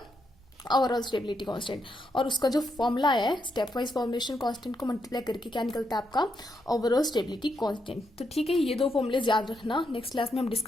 ओवरऑल स्टेबिलिटी कांस्टेंट, और उसका जो फॉर्मूला है स्टेप वाइज फॉर्मेशन कांस्टेंट को मल्टीप्लाई करके क्या निकलता है आपका ओवरऑल स्टेबिलिटी कांस्टेंट। तो ठीक है, ये दो फॉर्मूले याद रखना। नेक्स्ट क्लास में हम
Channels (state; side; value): noise; right; rumble, 28 dB below the sound